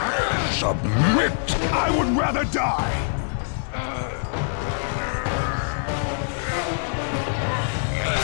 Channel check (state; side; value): silent; right; digital silence